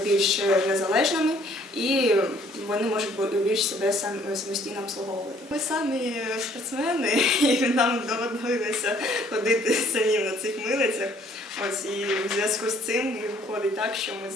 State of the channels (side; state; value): both; normal; correlation 0.61